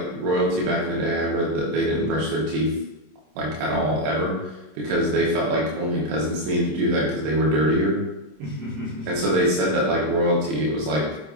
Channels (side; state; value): left; late; 27 ms